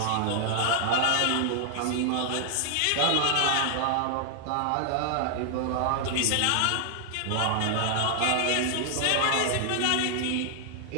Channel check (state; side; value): different; both; correlation 0.00